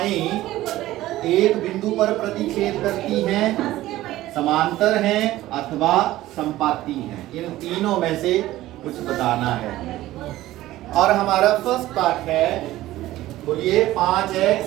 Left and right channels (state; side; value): quieter; left; 15.8 dB